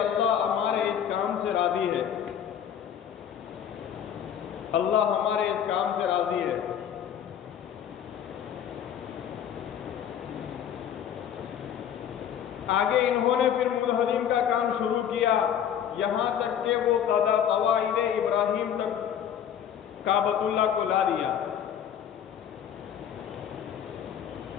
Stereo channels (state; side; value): quieter; right; 9.2 dB